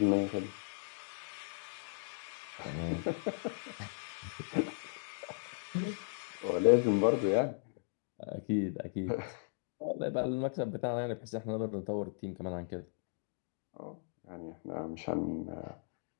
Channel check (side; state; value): right; silent; digital silence